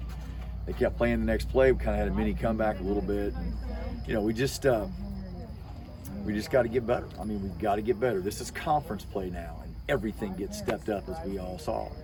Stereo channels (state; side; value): identical; both; correlation 1.00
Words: They kept playing the next play. We kind of had a mini comeback a little bit. And, we just got to get better. I mean, we've got to get better. This is conference play now, and everything gets stepped up, as we all saw.